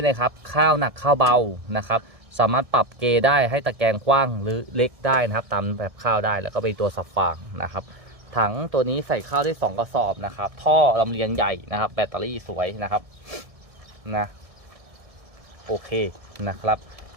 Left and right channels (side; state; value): left; late; 1.6 ms